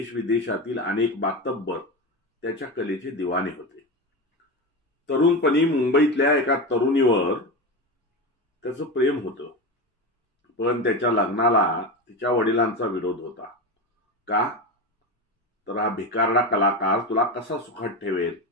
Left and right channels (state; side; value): normal; both; correlation 0.20